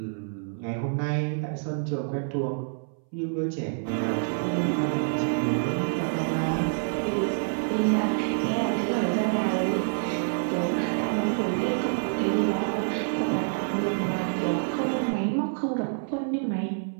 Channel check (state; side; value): silent; left; 60 dB below the other